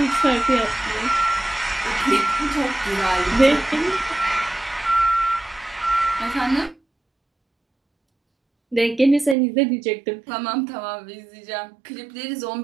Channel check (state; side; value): drops out; left; at 9.3 s